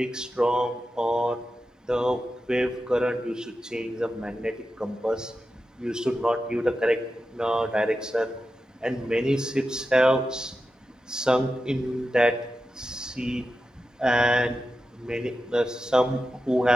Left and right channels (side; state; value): both; normal; correlation 0.91